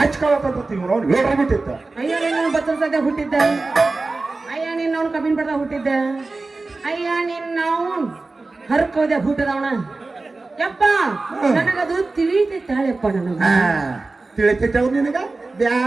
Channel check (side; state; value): left; quieter; 3.5 dB